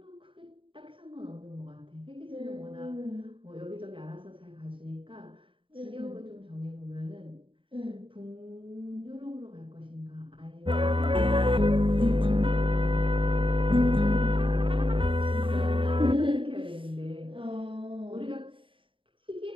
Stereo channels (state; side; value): late; left; 0.25 ms